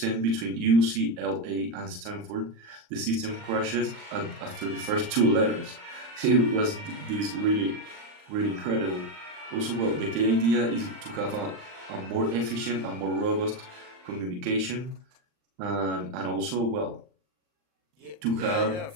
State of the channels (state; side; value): late; left; 39 ms